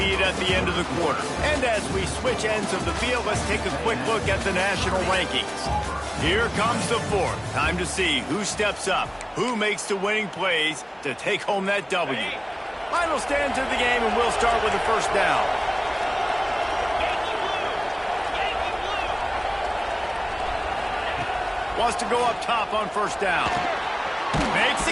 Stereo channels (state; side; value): identical; both; correlation 1.00